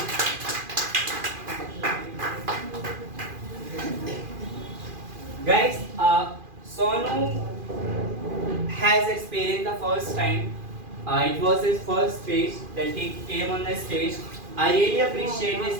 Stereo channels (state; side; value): late; left; 2.4 ms